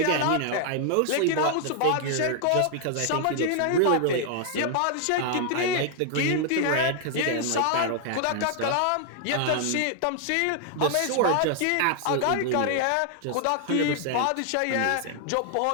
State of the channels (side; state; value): both; different; correlation 0.00